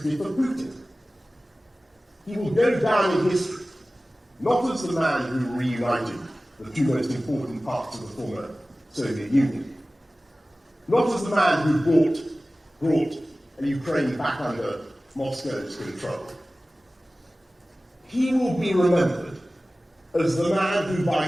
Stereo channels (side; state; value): both; normal; correlation 0.97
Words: for Putin. He will go down in history, not as the man who reunited the two most important parts of the former Soviet Union, not as the man who brought Ukraine back under Moscow's control. He will be remembered as the man who, by